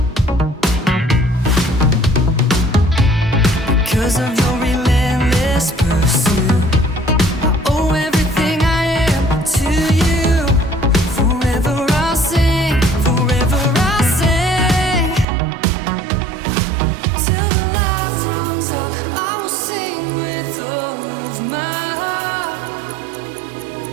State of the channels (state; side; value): drops out; left; at 15.2 s